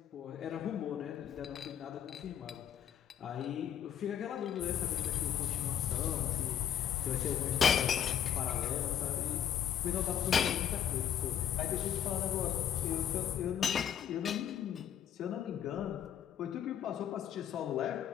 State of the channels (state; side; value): quieter; right; 9.7 dB